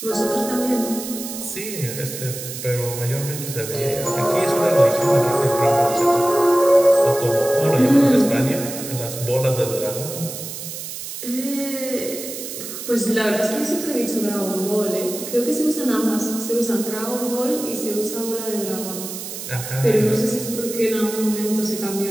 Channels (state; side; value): noise; right; hiss, 9 dB below the sound